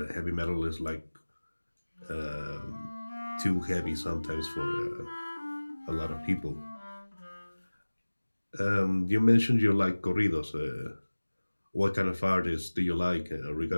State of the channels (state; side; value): inverted; both; correlation -1.00